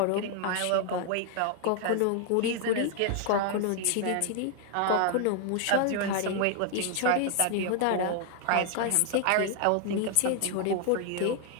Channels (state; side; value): different; both; correlation 0.00